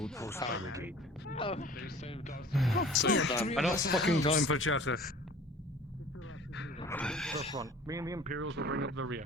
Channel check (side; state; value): both; normal; correlation 0.46